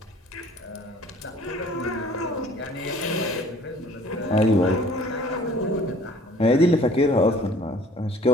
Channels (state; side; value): normal; both; correlation 0.52